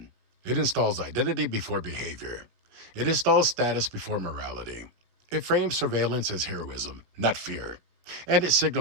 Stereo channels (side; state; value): left; late; 17 ms